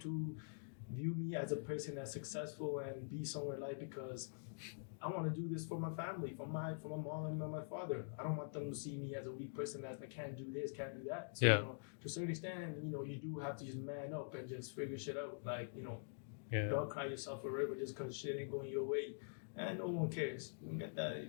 view me as a person that's successful and be somewhere in life, because I want to do this for my family, for my mom and my father. I don't want them to see me as a weak person that can't do this, can't do that. So, to a certain extent, you do have to just man up and just figure shit out. Like, don't cry yourself a river just because shit ain't going your way. And no one cares. You don't get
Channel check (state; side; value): silent; right; digital silence